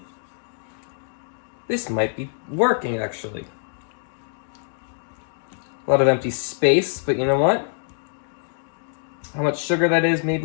This might be working, actually. A lot of empty space, but you know what? How much sugar that is,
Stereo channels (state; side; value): silent; right; digital silence